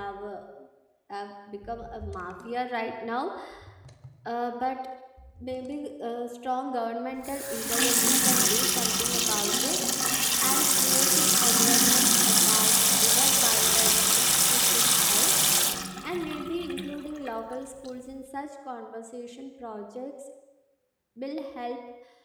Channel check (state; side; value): identical; both; correlation 1.00